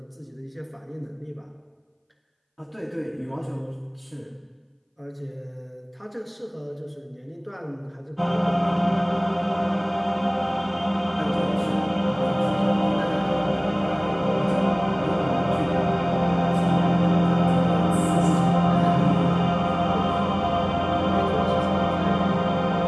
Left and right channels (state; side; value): identical; both; correlation 1.00